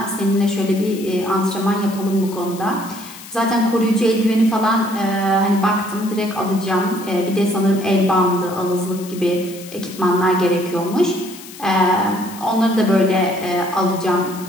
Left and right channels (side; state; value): left; noise; hiss, 16 dB below the sound